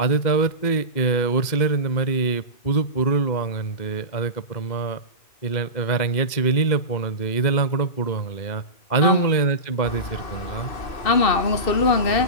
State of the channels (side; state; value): right; late; 2.1 ms